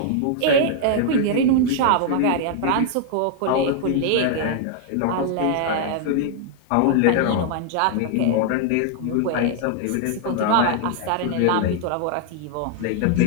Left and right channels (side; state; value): both; different; correlation 0.00